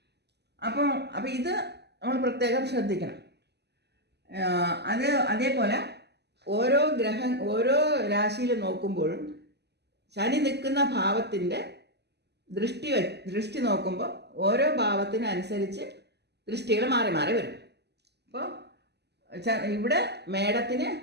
അപ്പോൾ ഇത് നമ്മൾ പ്രത്യേകം ശ്രദ്ധിക്കണം. അതേപോലെ ഓരോ രാശിയിൽ നോക്കുമ്പോഴും ശനി നിൽക്കുന്ന ഭാവത്തിൻ്റെ ദൃഷ്ടി നോക്കുമ്പോൾ ഓരോ ഭാവത്തിനനുസരിച്ച് ദൃഷ്ടികൾ മാറി മാറി വരും. അപ്പോൾ ഇവിടെ മേടത്തിന്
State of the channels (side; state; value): left; late; 0.49 ms